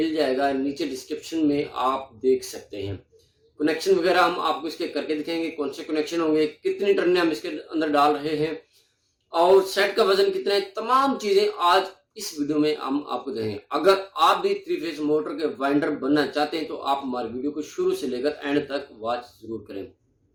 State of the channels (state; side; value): identical; both; correlation 1.00